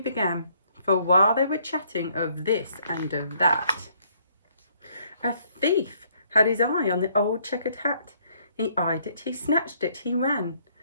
For while they were chatting of this and of that, a thief had his eye on the old checkered hat. He eyed it, he snatched it, he ran.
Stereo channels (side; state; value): both; inverted; correlation -0.66